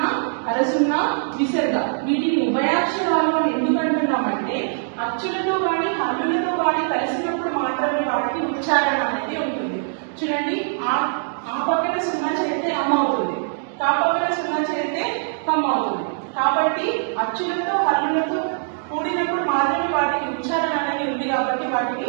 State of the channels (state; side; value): silent; left; digital silence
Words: అరసున్నా, విసర్గ. వీటిని ఉభయాక్షరాలు అని ఎందుకు అంటున్నామంటే అచ్చులతో కానీ హల్లులతో కానీ కలిసినప్పుడు మాత్రమే వాటికి ఉచ్చారణ అనేది ఉంటుంది. చూడండి, ఆ పక్కన సున్నా చేస్తే అమ్మ అవుతుంది, కా పక్కన సున్నా చేస్తే కమ్మ అవుతుంది. కాబట్టి అచ్చులతో హల్లులతో కూడినప్పుడు మాత్రమే వాటికి ఉచ్చారణ అనేది ఉంది. కాబట్టి వాటిని